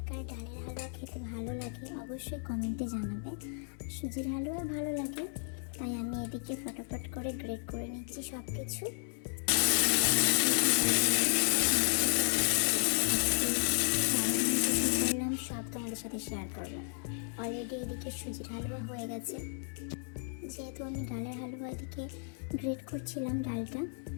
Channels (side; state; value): right; silent; 55 dB below the other